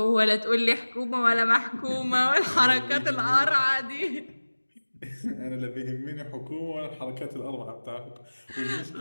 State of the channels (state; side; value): inverted; both; correlation -1.00